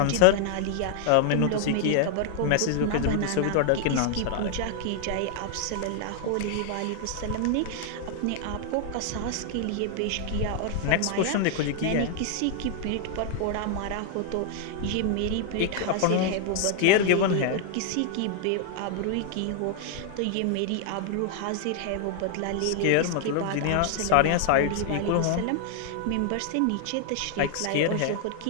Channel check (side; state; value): both; different; correlation 0.00